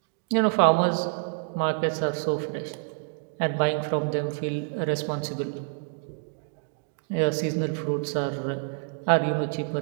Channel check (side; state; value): left; silent; digital silence